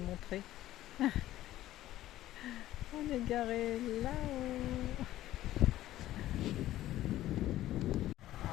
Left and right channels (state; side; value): quieter; right; 14.4 dB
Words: montrer. On est garé là-haut.